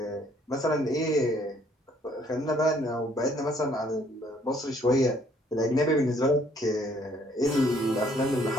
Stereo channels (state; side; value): normal; both; correlation 0.64